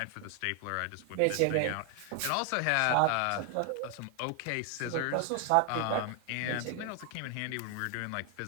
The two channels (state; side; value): different; both; correlation 0.00